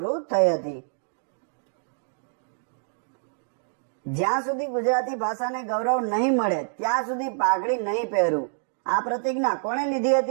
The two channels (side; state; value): left; silent; digital silence